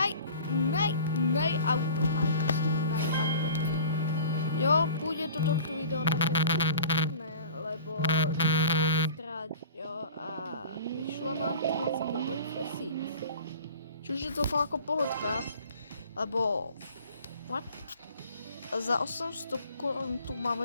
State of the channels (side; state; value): both; inverted; correlation -0.43